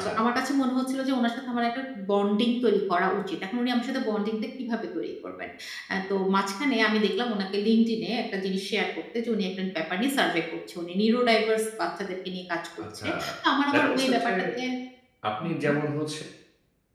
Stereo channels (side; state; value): both; identical; correlation 1.00